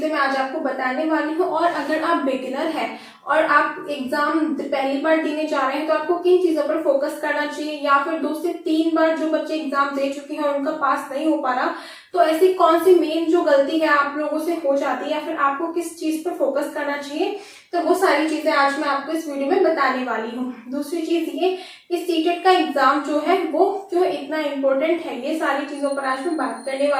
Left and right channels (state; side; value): identical; both; correlation 1.00